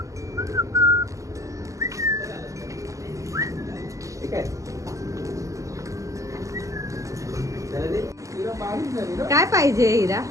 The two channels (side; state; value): left; late; 0.16 ms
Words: काय पाहिजे हिरा.